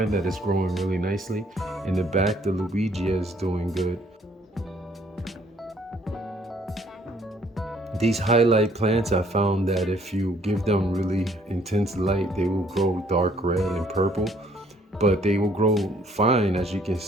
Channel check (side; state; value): both; normal; correlation 0.62